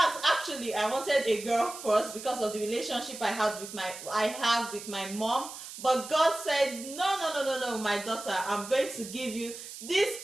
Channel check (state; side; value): noise; right; hiss, 12 dB below the sound